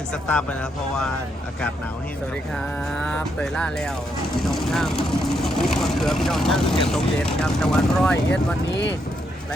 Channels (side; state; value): both; normal; correlation 0.79